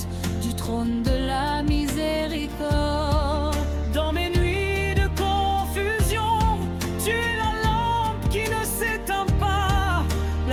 du trône de la miséricorde. Dans mes nuits de confusion, tu es la lampe qui ne s'éteint pas,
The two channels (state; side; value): identical; both; correlation 1.00